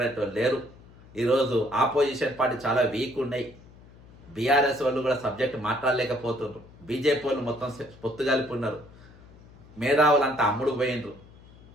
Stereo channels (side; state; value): left; noise; hum, 23 dB below the sound